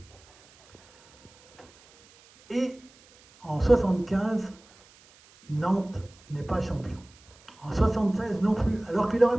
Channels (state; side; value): noise; right; hiss, 27 dB below the sound